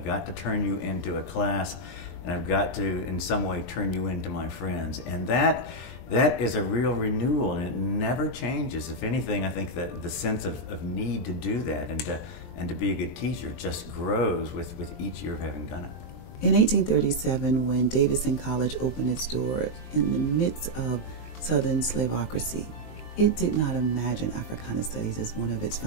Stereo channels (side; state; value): right; late; 23 ms